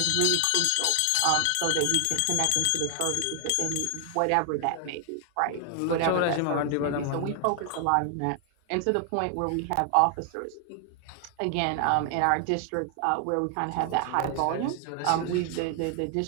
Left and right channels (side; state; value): both; different; correlation 0.00